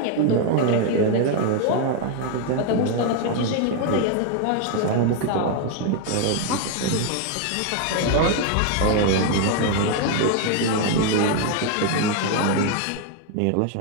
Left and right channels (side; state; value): both; different; correlation 0.01